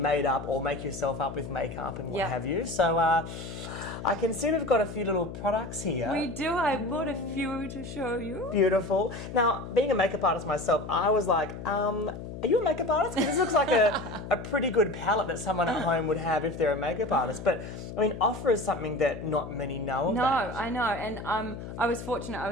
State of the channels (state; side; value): noise; left; hum, 10 dB below the sound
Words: up or make yourself up with makeup and what have you. So I can see we've got a few little products here. We do. I bought a few to show you. Beautiful. Now, being a makeup artist myself, I was like, are you a makeup artist? Because this looks like a pretty good palette that someone at home would have if they're a makeup artist. But, I mean, offer is something that not many know about. No, I know. And I was fortunate.